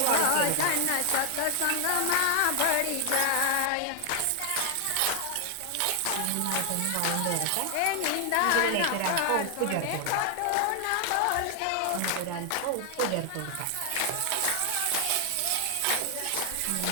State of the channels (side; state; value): both; different; correlation 0.00